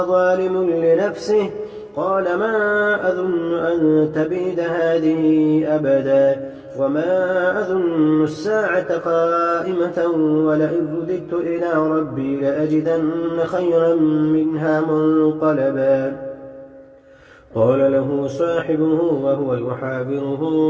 ظالم لنفسه قال ما أظن أن تبيد هذه أبدا وما أظن الساعة قائمة ولئن رددت إلى ربي لأجدن خيرا منها منقلبا قال له صاحبه وهو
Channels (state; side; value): identical; both; correlation 1.00